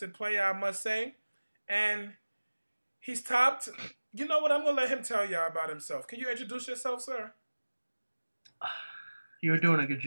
player, I must say, and he's topped. You know what? I'm gonna let him tell y'all about himself. Can you introduce yourself, sir? You were doing a good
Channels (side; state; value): both; inverted; correlation -1.00